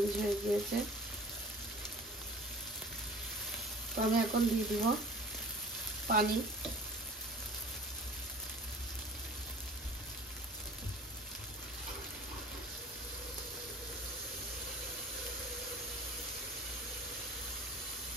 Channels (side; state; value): both; normal; correlation 0.45